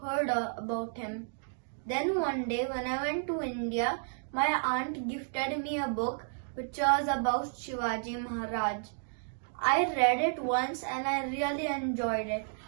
heard about him. Then one day when I went to India, my aunt gifted me a book which was about Shivaji Maharaj. I read it once and I really enjoyed it.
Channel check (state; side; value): silent; left; digital silence